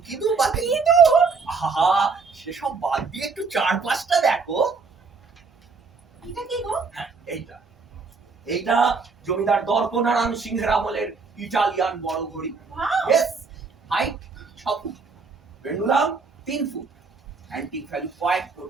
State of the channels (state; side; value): quieter; left; 4.7 dB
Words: কিন্তু আহা, সেসব বাদ দিয়ে একটু চারপাশটা দেখো। এটা কি গো? হ্যাঁ, এইটা জমিদার দর্পনারায়ণ সিংহের আমলের ইটালিয়ান বড় ঘড়ি। Wow! Yes, height 6 foot, pendulum 3 foot, antique value কয়েক